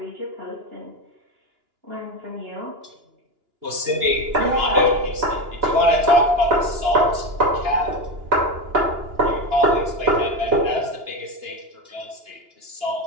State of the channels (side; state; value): left; late; 2.9 ms